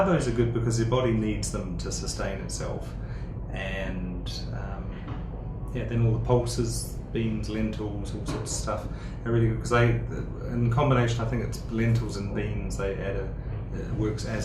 are good because your body needs them to sustain itself. And then all the pulses, beans, lentils, all sorts of stuff are really good because in combination, I think it's lentils and beans, they add it works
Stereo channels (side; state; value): both; identical; correlation 1.00